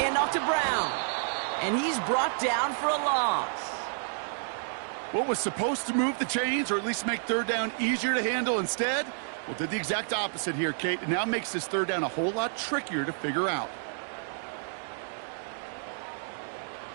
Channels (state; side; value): silent; left; digital silence